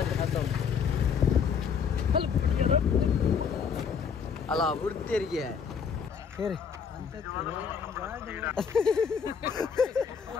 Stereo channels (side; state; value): right; quieter; 6.6 dB